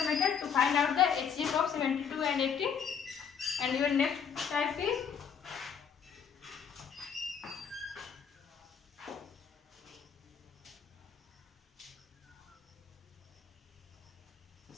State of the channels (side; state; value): right; quieter; 7.1 dB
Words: method to find out the HCF of 72 and 80. And your next type is